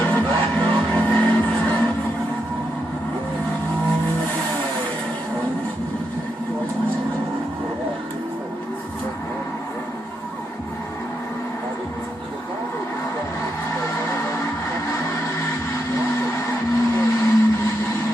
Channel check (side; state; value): both; normal; correlation 0.82